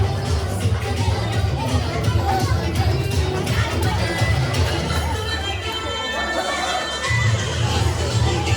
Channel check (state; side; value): identical; both; correlation 1.00